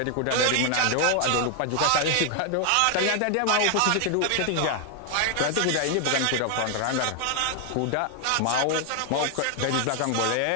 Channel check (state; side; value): different; both; correlation 0.00